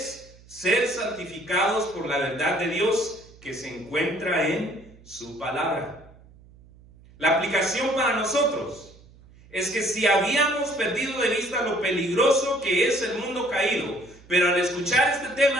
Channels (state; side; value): noise; right; hum, 24 dB below the sound